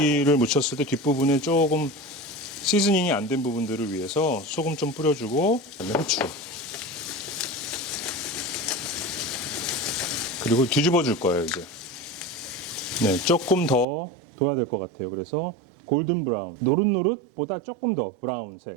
묻혔을 때 뒷부분에 조금 시즈닝이 안 된 부분들을 위해서 소금 좀 뿌려주고 그다음에 후추 그리고 뒤집어 줄 거예요 이제. 네, 조금 더 둬야 될 것 같아요. 그래서 골든 브라운, 노릇노릇보다 조금 더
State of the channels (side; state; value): left; drops out; at 13.9 s